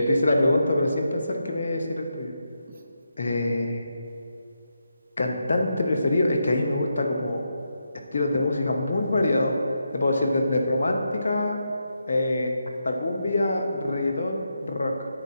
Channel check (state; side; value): inverted; both; correlation -0.84